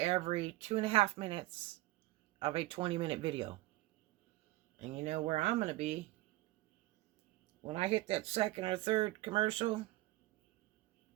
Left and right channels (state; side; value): quieter; left; 18.5 dB